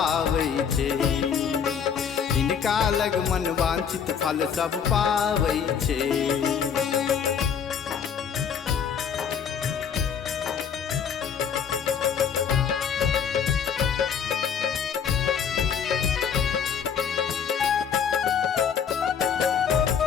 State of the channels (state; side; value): quieter; right; 7.3 dB